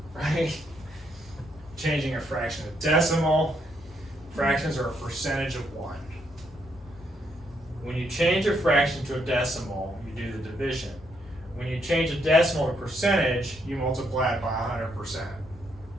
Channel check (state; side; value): normal; both; correlation 0.75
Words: right? Changing a fraction to decimal. Fractions are a percentage of 1. When you change a fraction to a decimal, you do the division. When you change a decimal to percentage, you multiply it by 100%.